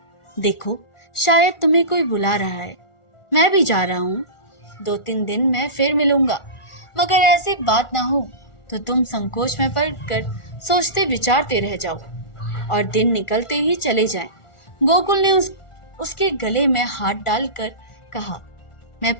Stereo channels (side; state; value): right; late; 1.4 ms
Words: देखो, शायद तुम्हें कोई बुला रहा है। मैं भी जा रहा हूँ। 2-3 दिन में फिर मिलूंगा। मगर ऐसी बात ना हो तो तुम संकोच में पड़कर सोचते विचारते रह जाओ और दिन निकलते ही चले जाएं। गोकुल ने उसके गले में हाथ डालकर कहा, मैं